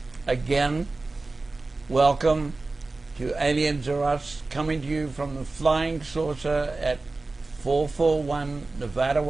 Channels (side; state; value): left; quieter; 3.4 dB